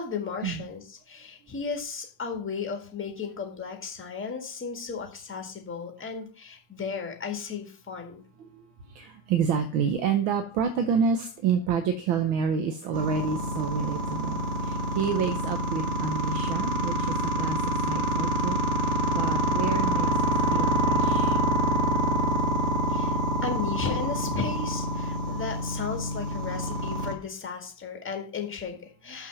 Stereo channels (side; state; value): both; normal; correlation 0.07